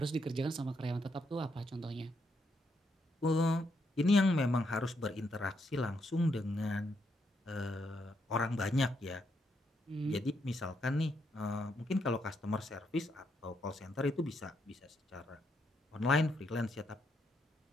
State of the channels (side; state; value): both; normal; correlation 0.78